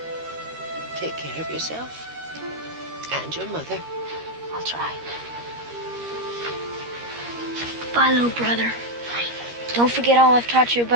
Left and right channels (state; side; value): late; left; 13 ms